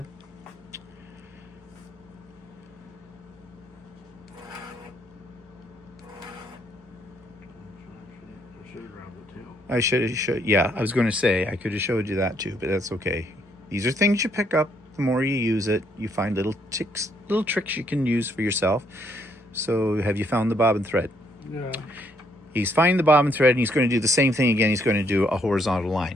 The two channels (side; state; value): both; normal; correlation 0.70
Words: I should, yeah, I was going to say, I could have showed you that too, but that's okay. These are things you pick up. The more you use it, you find little tricks you can use for yourself. So have you found the bobbin thread? Yeah. He's finding the bobbin thread and he's going to do the same thing again. He's going to do a horizontal